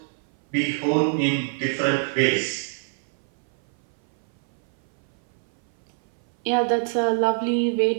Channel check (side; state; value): left; silent; 57 dB below the other